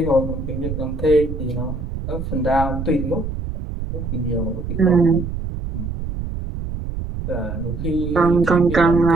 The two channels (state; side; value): noise; right; rumble, 6 dB below the sound